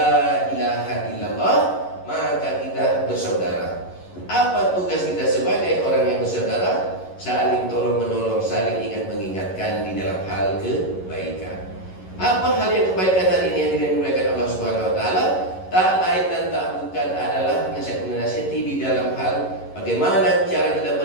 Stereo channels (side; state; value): right; late; 11 ms